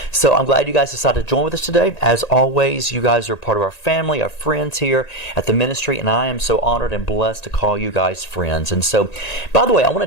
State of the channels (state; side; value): late; right; 1.9 ms